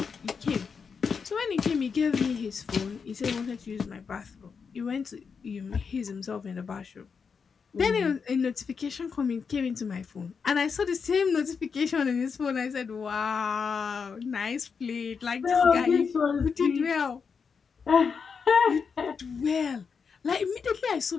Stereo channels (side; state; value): right; quieter; 5.8 dB